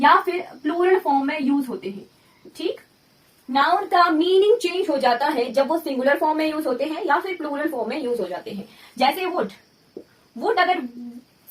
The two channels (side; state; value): both; identical; correlation 1.00